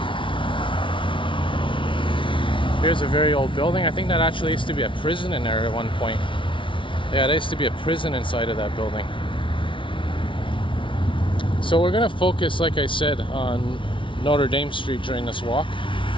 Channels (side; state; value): right; late; 0.25 ms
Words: Here's a very old building. I think that actually used to be a prison in there at one point. Yeah, there used to be a prison inside of that building. So we're going to focus, like I said, on Notre-Dame Street during this walk.